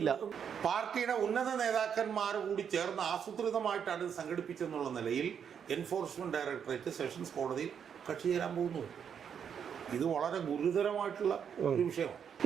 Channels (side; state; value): left; quieter; 7.7 dB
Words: പാർട്ടിയുടെ ഉന്നത നേതാക്കന്മാർ കൂടി ചേർന്ന് ആസൂത്രിതമായിട്ടാണ് ഇത് സംഘടിപ്പിച്ചെന്നുള്ള നിലയിൽ എൻഫോഴ്സ്മെൻറ്റ് ഡയറക്ടറേറ്റ് സെഷൻസ് കോടതിയിൽ കക്ഷി ചേരാൻ പോകുന്നു. ഇത് വളരെ ഗുരുതരമായിട്ടുള്ള ഒരു വിഷയമാണ്.